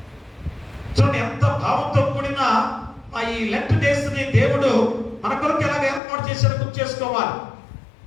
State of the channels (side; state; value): right; drops out; at 6.0 s